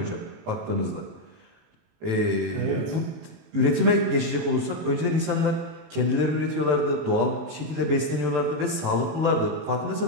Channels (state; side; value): late; left; 18 ms